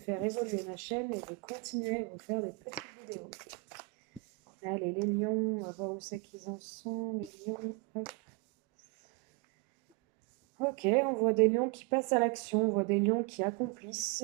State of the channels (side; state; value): left; quieter; 28.1 dB